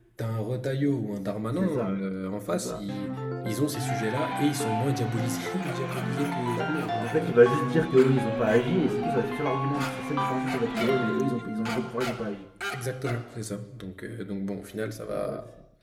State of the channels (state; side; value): identical; both; correlation 1.00